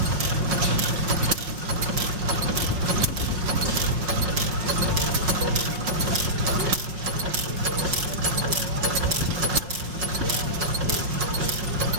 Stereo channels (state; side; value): late; left; 5.5 ms